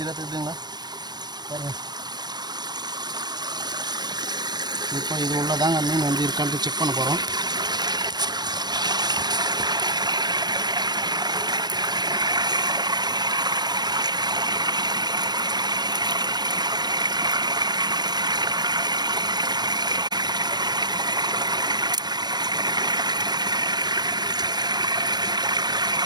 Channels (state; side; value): late; left; 0.20 ms